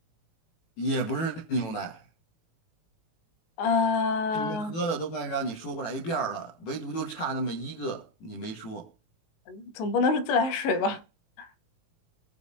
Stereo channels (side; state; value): right; late; 18 ms